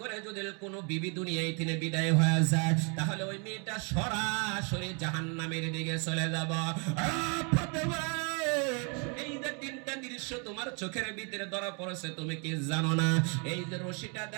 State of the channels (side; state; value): left; quieter; 35.4 dB